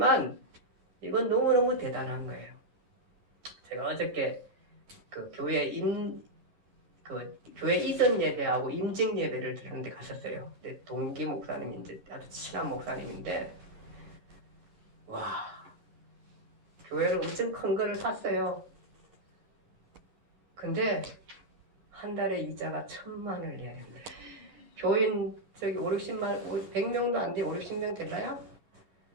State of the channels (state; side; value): late; left; 11 ms